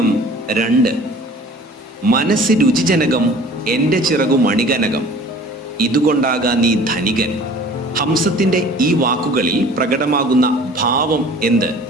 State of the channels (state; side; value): normal; both; correlation 0.47